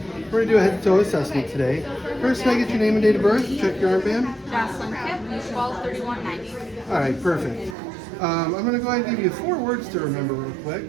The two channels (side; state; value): left; drops out; at 7.8 s